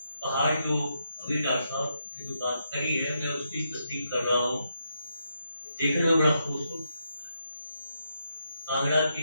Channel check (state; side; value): inverted; both; correlation -0.81